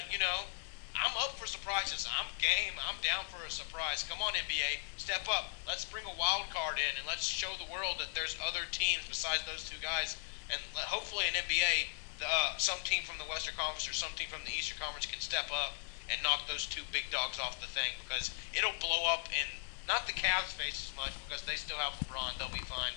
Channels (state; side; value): silent; right; 53 dB below the other